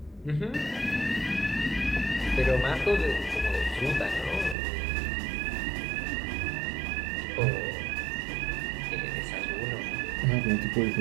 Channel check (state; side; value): drops out; left; at 4.5 s